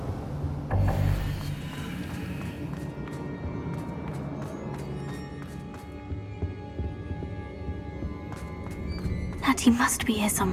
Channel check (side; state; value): both; identical; correlation 1.00